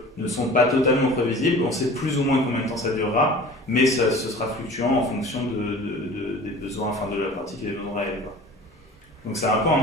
ne sont pas totalement prévisibles. On sait plus ou moins combien de temps ça durera, mais ce sera fluctuant en fonction des besoins, enfin de la pratique et des besoins réels, quoi. Donc c'est un peu un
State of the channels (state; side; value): normal; both; correlation 0.42